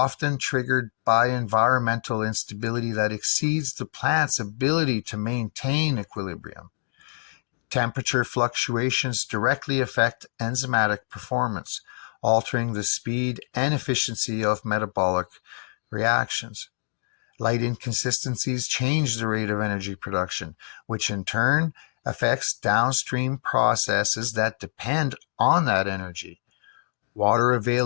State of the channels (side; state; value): right; silent; digital silence